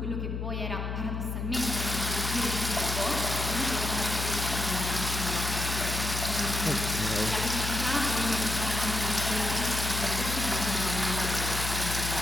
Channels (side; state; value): left; noise; hum, 3 dB below the sound